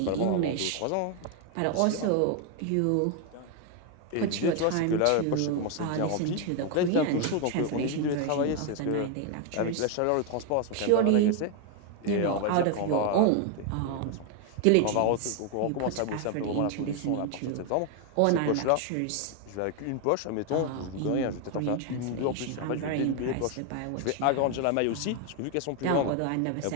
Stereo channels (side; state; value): both; different; correlation 0.01